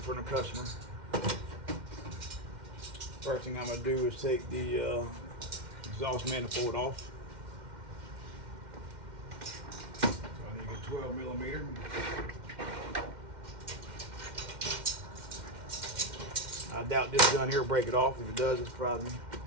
for the customer. First thing I'm gonna do is take the exhaust manifold off. So I need a 12 millimeter. I doubt this gun here will break it off. If it does, it surprises me.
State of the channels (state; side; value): late; left; 2.1 ms